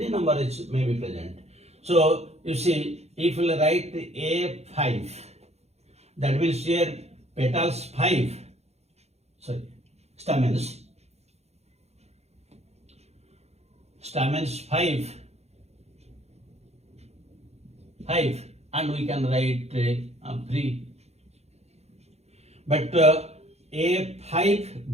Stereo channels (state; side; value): late; left; 0.31 ms